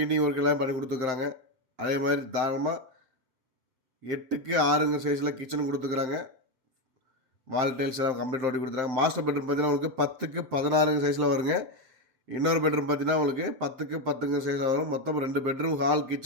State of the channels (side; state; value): left; late; 7.8 ms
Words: work எல்லாம் பண்ணி கொடுத்துருக்குறாங்க. அதே மாதிரி தாராளமாக 8க்கு 6 சைஸில் கிச்சன் கொடுத்துருக்குறாங்க. வால் டைல்ஸ் எல்லாம் கம்ப்ளீட் ஓட்டி கொடுத்துருக்காங்க. மாஸ்டர் பெட்ரூம் பார்த்தீங்கன்னா உங்களுக்கு 10க்கு 16 சைஸில் வருங்க. இன்னொரு பெட்ரூம் பார்த்தீங்கன்னா உங்களுக்கு 10க்கு 10 சைஸில் வரும். மொத்தம் 2 பெட்ரூம், ஹால்,